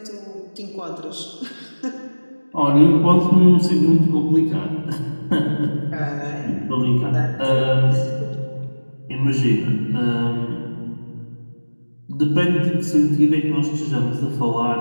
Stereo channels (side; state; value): both; inverted; correlation -1.00